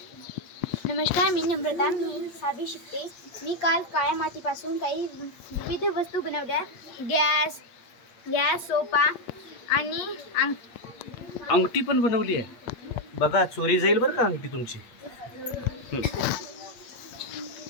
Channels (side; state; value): right; late; 8.6 ms